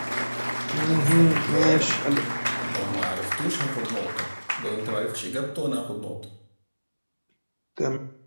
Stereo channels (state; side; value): inverted; both; correlation -1.00